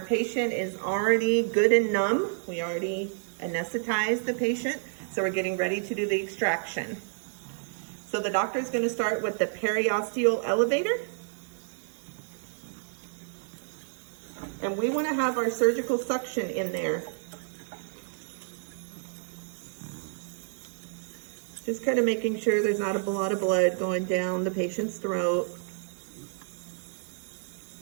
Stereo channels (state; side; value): silent; left; digital silence